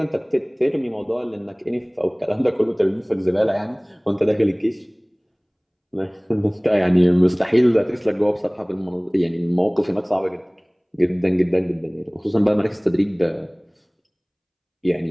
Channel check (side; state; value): both; identical; correlation 1.00